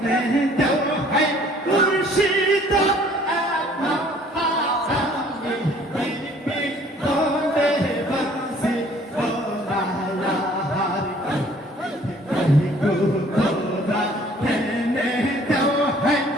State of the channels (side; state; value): both; normal; correlation 0.56